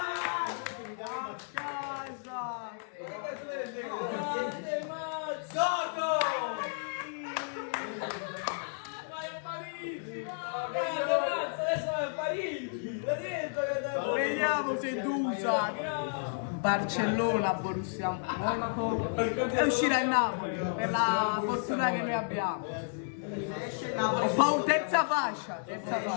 Vediamo se Dusa Barcellona, Borussia Monaco e uscirà il Napoli per la fortuna che noi abbiamo. Poi terza fascia.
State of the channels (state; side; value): silent; right; digital silence